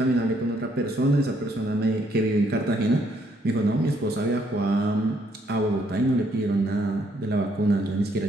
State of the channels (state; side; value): normal; both; correlation 0.69